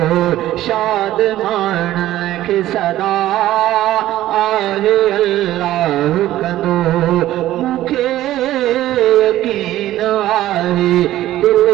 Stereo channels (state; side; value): quieter; left; 14.3 dB